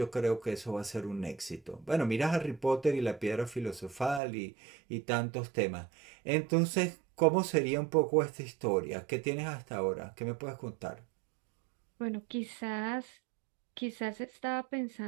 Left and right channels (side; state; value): left; drops out; at 4.2 s